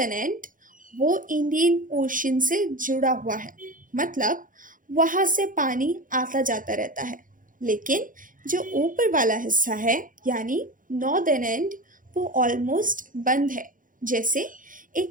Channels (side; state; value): left; late; 0.39 ms